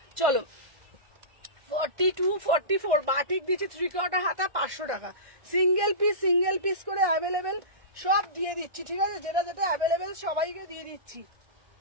চলো 42, 44 বাটিক দিচ্ছি 3/4 হাতা 500 টাকা। সিঙ্গেল পিস করে অ্যাভেলেবেল সব দিয়ে দিচ্ছি। ঠিক আছে, যেটা যেটা অ্যাভেলেবেল সবাইকে দিয়ে দিচ্ছি।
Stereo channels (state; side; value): late; left; 1.5 ms